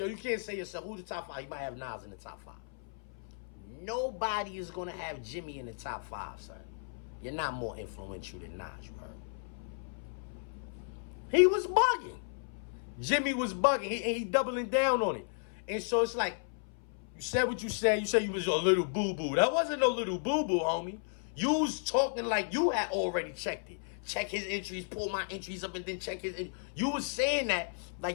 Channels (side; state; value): right; silent; 55 dB below the other